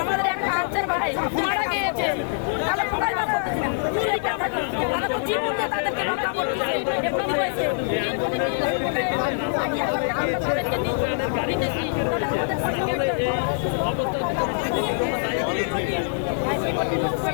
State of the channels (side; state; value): right; silent; digital silence